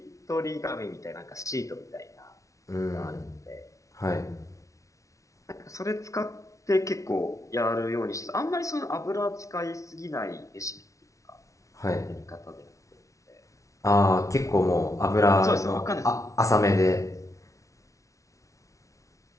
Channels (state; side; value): late; right; 0.15 ms